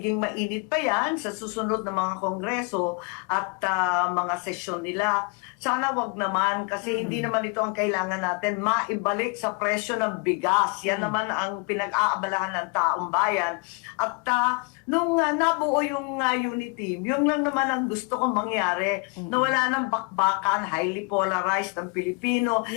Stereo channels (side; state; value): right; quieter; 32.3 dB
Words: mainit pa yan sa susunod na mga kongreso at mga sesyon nila. Sana wag naman kasi hindi naman ito ang kailangan natin, maibalik sa presyo ng bigas. Yan naman ang pinag-aabalahan ng taong bayan. At nung nabuo yung unit team, yun lang naman ang gusto kong mangyari, na wala ng bakbakan, highly polarized ang Pilipino,